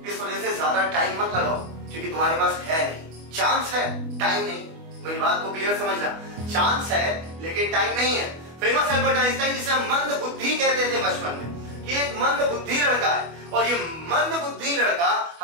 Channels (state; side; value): late; left; 25 ms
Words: इस वजह से ज्यादा टाइम मत लगाओ, क्योंकि तुम्हारे पास है नहीं, चांस है, टाइम नहीं। मेरी बात को क्लियर समझना, चांस है लेकिन टाइम नहीं है। फेमस एल्बर्ट आइंस्टाइन, जिसे मंद बुद्धि कहते थे बचपन में, कि एक मंद बुद्धि लड़का है, और ये मंद बुद्धि लड़का